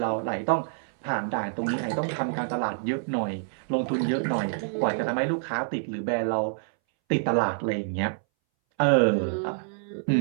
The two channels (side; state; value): left; silent; 60 dB below the other